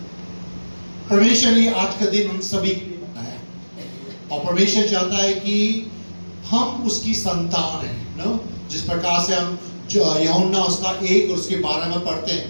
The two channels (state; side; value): inverted; both; correlation -1.00